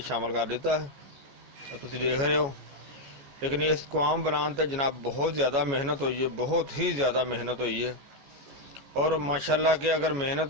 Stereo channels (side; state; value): left; late; 14 ms